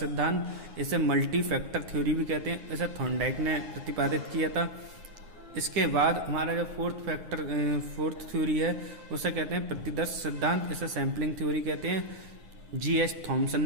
इसे मल्टी फैक्टर थ्योरी भी कहते हैं। इसे थॉर्नडाइक ने प्रतिपादित किया था। इसके बाद हमारा जो फोर्थ थ्योरी है उसे कहते हैं प्रतिदर्श सिद्धांत। इसे सैम्पलिंग थ्योरी कहते हैं। G.H. थॉमसन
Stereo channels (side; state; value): left; late; 9.6 ms